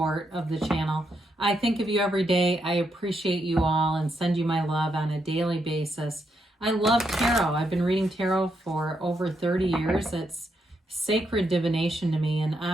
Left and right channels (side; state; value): both; normal; correlation 0.80